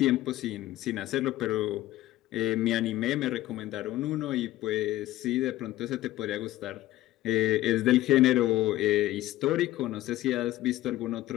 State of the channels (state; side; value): quieter; right; 15.6 dB